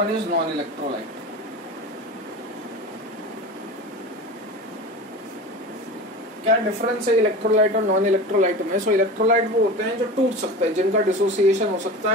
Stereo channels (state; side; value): normal; both; correlation 0.31